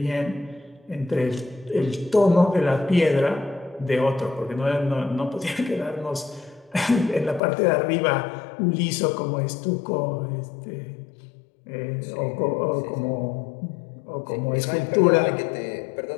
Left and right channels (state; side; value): drops out; right; at 7.4 s